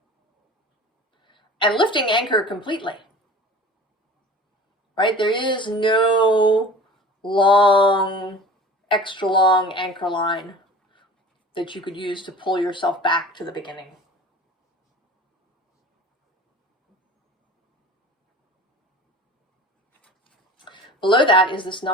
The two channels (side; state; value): both; normal; correlation 0.40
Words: And lifting anchor completely. Right? There is no extra long anchor line that you could use to pull yourself back to the beginning. Below that is this